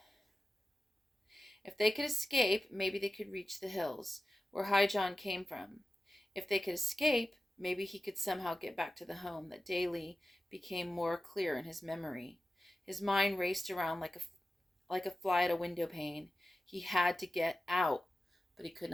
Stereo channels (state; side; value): normal; both; correlation 0.93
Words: If they could escape, maybe they could reach the hills, where High John came from. If they could escape, maybe he could somehow get back to the home that daily became more clear in his memory. His mind raced around like a fly at a window pane. He had to get out, but he could